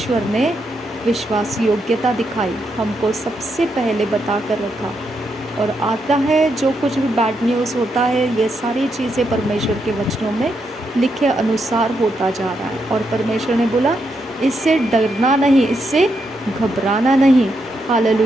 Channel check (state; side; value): normal; both; correlation 0.81